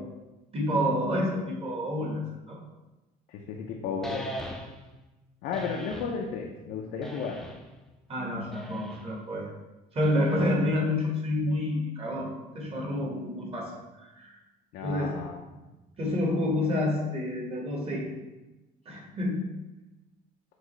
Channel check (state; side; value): normal; both; correlation 0.55